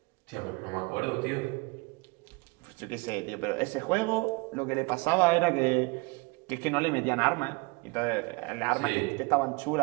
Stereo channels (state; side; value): quieter; left; 26.9 dB